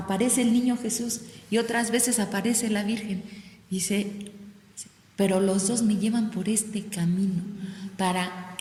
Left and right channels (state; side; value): identical; both; correlation 1.00